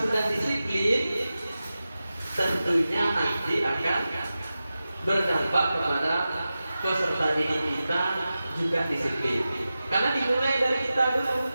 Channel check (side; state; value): both; inverted; correlation -0.94